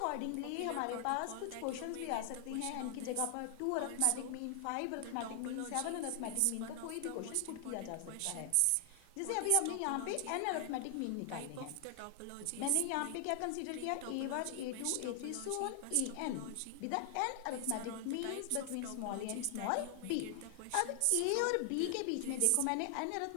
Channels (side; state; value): both; different; correlation 0.00